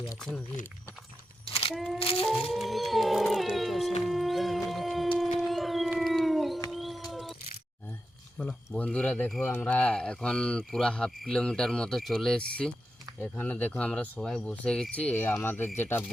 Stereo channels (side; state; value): both; normal; correlation 0.89